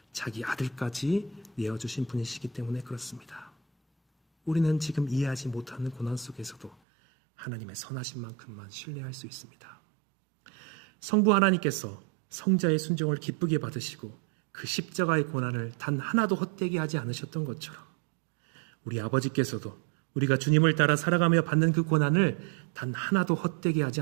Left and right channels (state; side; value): drops out; left; at 6.8 s